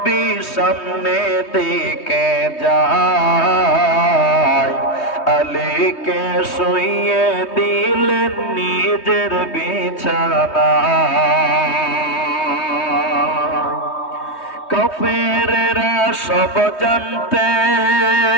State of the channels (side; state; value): right; late; 3.2 ms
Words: সামনে দিকে যায় আলীকে শুইয়ে দিলেন নিজের বিছানা কাফেরেরা সব জানতে